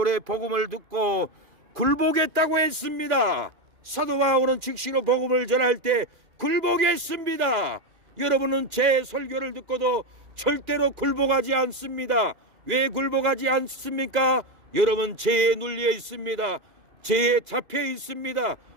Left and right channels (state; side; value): late; left; 2.3 ms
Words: 복음을 듣고 굴복했다고 했습니다. 사도 바울은 즉시로 복음을 전할 때 굴복했습니다. 여러분은 제 설교를 듣고도 절대로 굴복하지 않습니다. 왜 굴복하지 않습니까? 여러분 죄에 눌려 있습니다. 죄에 잡혀 있습니다.